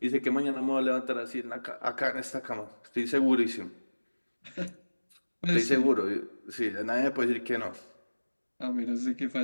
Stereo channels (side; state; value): both; inverted; correlation -1.00